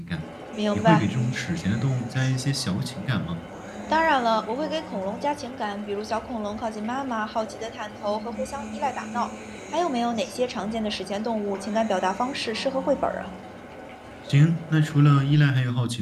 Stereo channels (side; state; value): both; identical; correlation 1.00